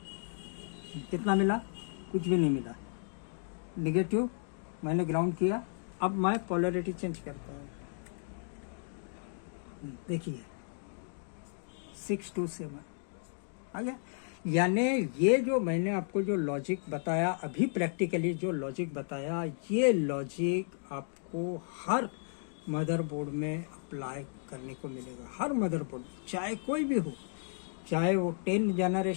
कितना मिला? कुछ भी नहीं मिला, नेगेटिव मैंने ग्राउंड किया। अब मैं पोलैरिटी चेंज करता हूँ, देखिए 627 आ गया। यानी ये जो मैंने आपको जो लॉजिक बताया अभी, प्रैक्टिकली जो लॉजिक बताया, ये लॉजिक आपको हर मदरबोर्ड में अप्लाई करने को मिलेगा, हर मदरबोर्ड, चाहे कोई भी हो, चाहे वो 10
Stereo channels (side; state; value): right; silent; digital silence